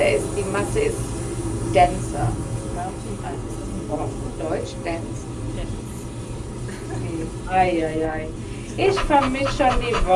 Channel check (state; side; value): identical; both; correlation 1.00